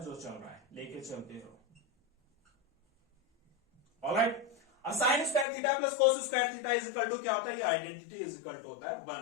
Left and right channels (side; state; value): right; drops out; at 5.5 s